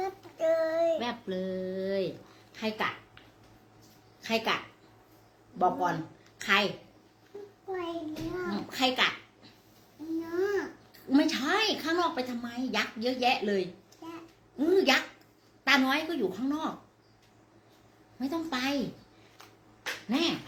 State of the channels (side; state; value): both; identical; correlation 1.00